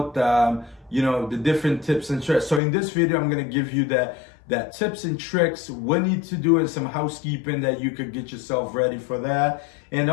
The different tips and tricks. So in this video, I'm going to give you that tips and tricks, what you need to do, and some housekeeping that you could get yourself ready for that. And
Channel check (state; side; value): drops out; right; at 2.6 s